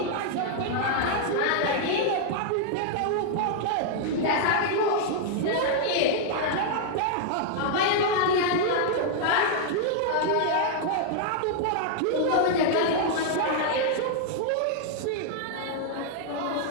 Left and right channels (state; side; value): different; both; correlation -0.01